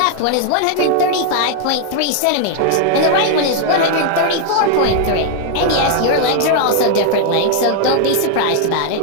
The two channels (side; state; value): both; different; correlation 0.00